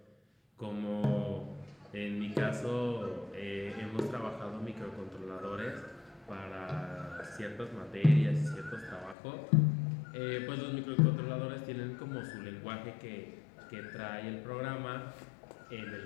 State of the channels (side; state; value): right; drops out; at 9.2 s